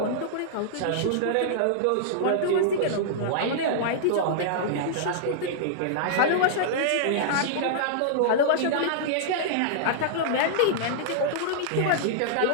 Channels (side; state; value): both; different; correlation -0.02